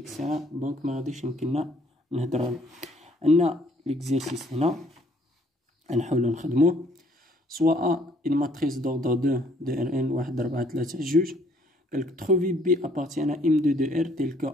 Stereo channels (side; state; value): both; normal; correlation 0.63